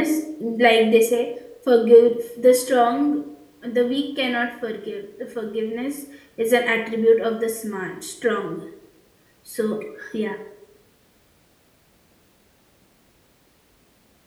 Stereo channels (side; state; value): both; identical; correlation 1.00